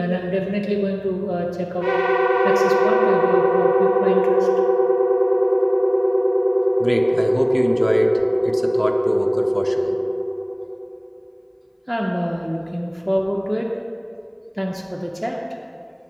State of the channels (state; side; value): identical; both; correlation 1.00